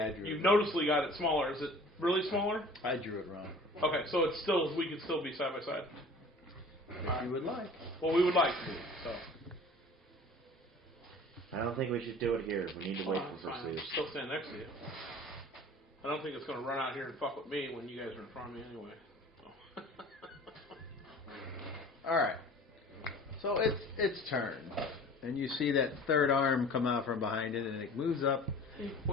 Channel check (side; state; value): both; normal; correlation 0.45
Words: I drew. You've it noticeably got it smaller. Is it really smaller? I drew it wrong. Okay, so it's still we could still be side by side. If you would like. Well, we would like to. So. I don't think we should do it here. We need to wait for Fine. pursuit. Still stand next to you. I don't think it's going to run out here and fuck with me when you guys are in front of me anyway. So. All right. So it's turn, and you see that third arm come out from behind it, and it moves up.